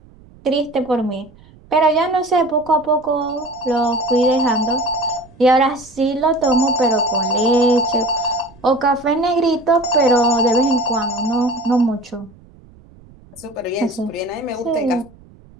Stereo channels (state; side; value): noise; right; rumble, 25 dB below the sound